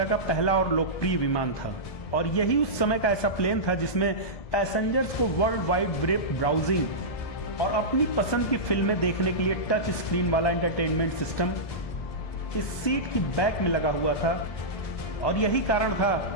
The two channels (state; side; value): late; right; 1.2 ms